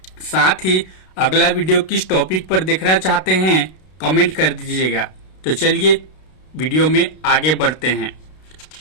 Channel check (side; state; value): right; late; 32 ms